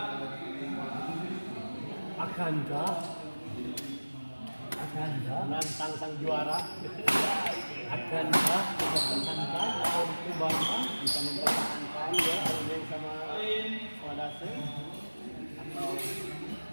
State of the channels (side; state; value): both; inverted; correlation -1.00